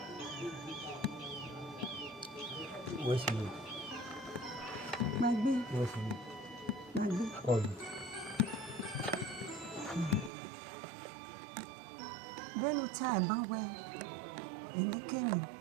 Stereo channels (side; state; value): left; drops out; at 10.3 s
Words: Where's you? magbe Where's you? magbe Oh, bẹ́ẹ̀ni tí àìbá wẹ èlékèmí